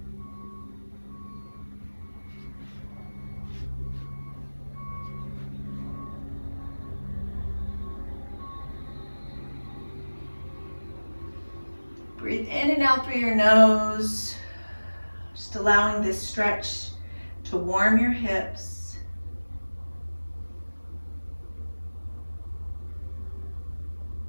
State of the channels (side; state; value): both; inverted; correlation -1.00